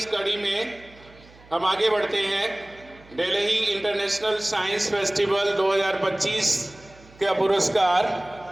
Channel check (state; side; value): noise; right; hum, 25 dB below the sound